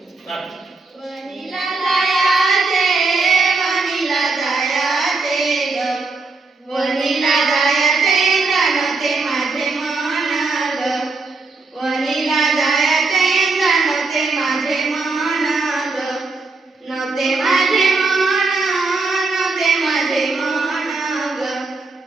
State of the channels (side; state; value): left; quieter; 3.9 dB